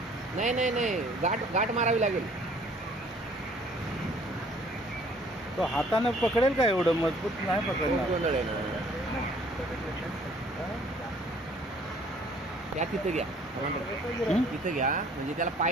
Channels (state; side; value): normal; both; correlation 0.57